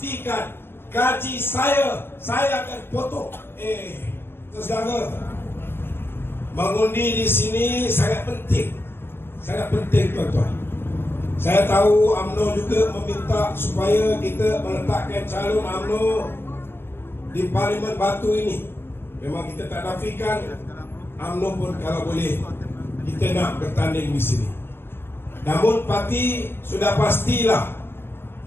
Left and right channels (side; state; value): right; late; 0.11 ms